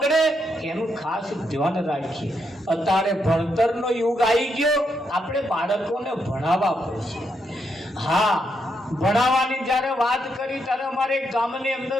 એનું ખાસ ધ્યાન રાખીએ. અત્યારે ભણતરનો યુગ આવી ગયો, આપણે બાળકોને ભણાવવા પડશે. હા, ભણાવવાની જ્યારે વાત કરી ત્યારે અમારે એક ગામની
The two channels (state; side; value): normal; both; correlation 0.79